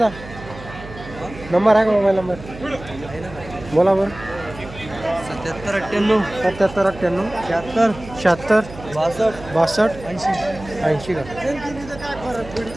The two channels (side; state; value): right; noise; hum, 15 dB below the sound